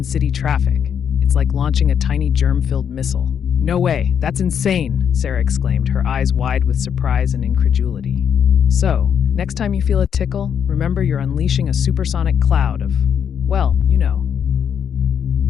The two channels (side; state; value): right; quieter; 8.0 dB